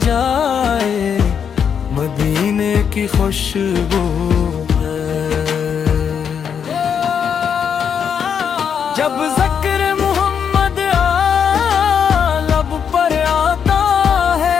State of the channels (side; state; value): right; quieter; 7.4 dB